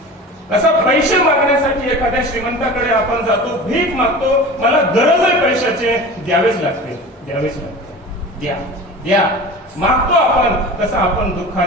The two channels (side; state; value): both; normal; correlation 0.35